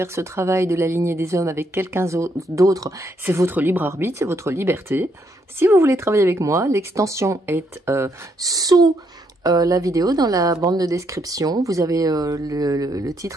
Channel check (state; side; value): normal; both; correlation 0.74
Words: ce travail de la lignée des hommes avec quelqu'un d'autre, c'est votre libre arbitre, c'est votre liberté. Si vous voulez travailler avec moi, l'extension est sous la vidéo, dans la bande de description, vous avez le